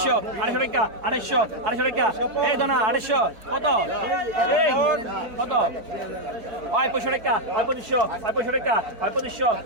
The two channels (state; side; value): late; left; 4.4 ms